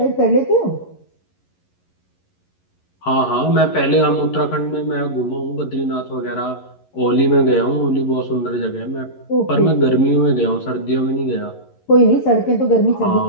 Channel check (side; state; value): right; late; 11 ms